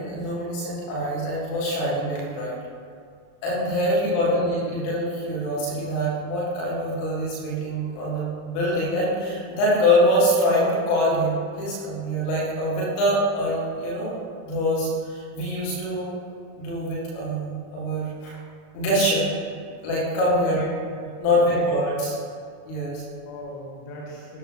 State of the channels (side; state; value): right; late; 37 ms